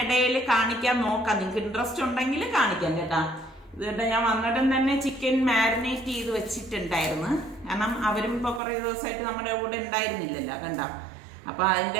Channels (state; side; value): drops out; left; at 8.6 s